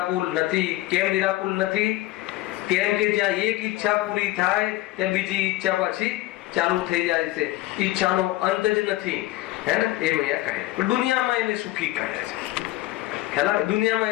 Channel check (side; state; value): right; quieter; 17.1 dB